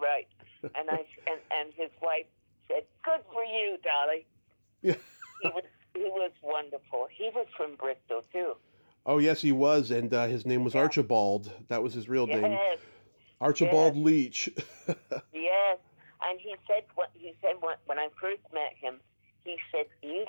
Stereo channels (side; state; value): both; inverted; correlation -1.00